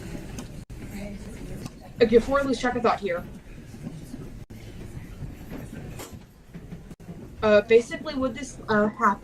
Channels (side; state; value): both; identical; correlation 1.00